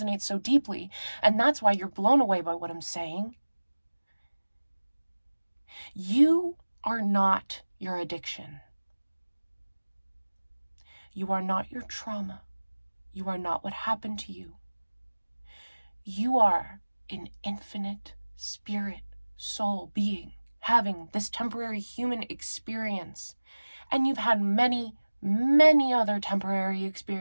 so deeply. And that's why you're blown away by what I'm saying. You are not your addiction. You are not your trauma. You are not what happened to you. You are an infinite spirit, soul being having this temporary human experience. And you've had many, many other temporary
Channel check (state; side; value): inverted; both; correlation -1.00